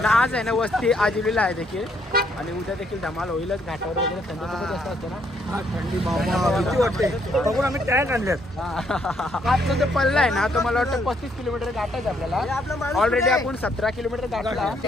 ना आज आहे ना वस्ती आजिवलीला आहे देखील आणि उद्या देखील धमाल होईलच घाटावर वगैरे थंडी जास्त असते ना थंडी वाटते बघून आम्ही टॅग आणल्यात आजचा जो पल्ला आहे ना तो मला वाटतं 35 किलोमीटर गाठायचं आपल्याला ऑलरेडी आपण 17 किलोमीटर गाठला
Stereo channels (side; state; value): both; normal; correlation 0.71